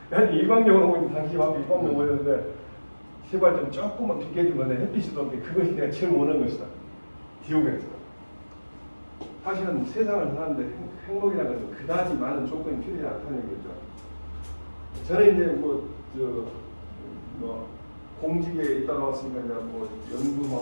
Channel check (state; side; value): inverted; both; correlation -1.00